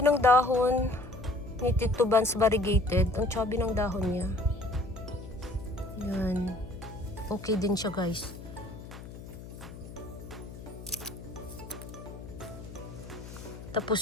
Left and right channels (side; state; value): left; noise; hum, 13 dB below the sound